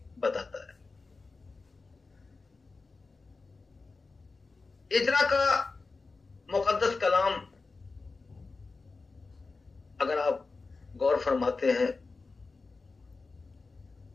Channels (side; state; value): right; quieter; 4.0 dB